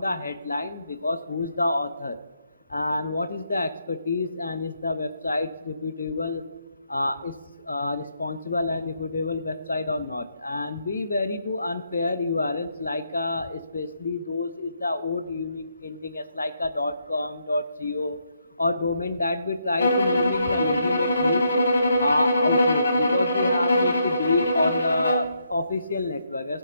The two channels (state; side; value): inverted; both; correlation -0.77